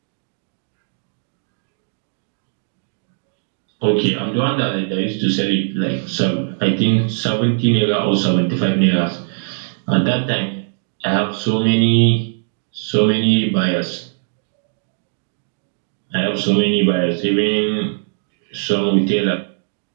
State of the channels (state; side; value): silent; left; digital silence